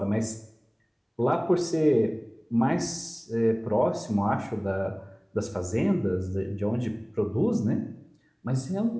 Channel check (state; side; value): identical; both; correlation 1.00